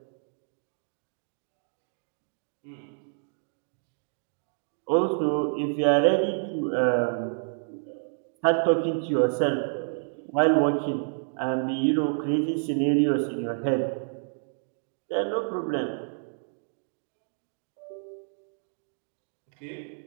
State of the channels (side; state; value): left; silent; digital silence